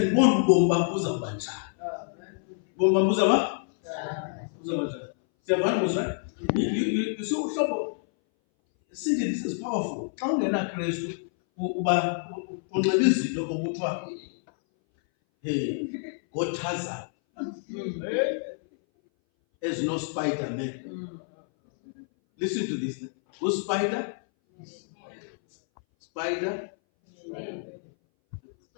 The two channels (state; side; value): silent; right; 59 dB below the other